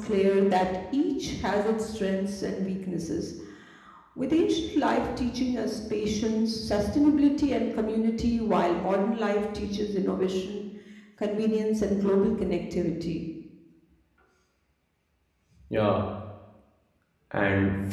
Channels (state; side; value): identical; both; correlation 1.00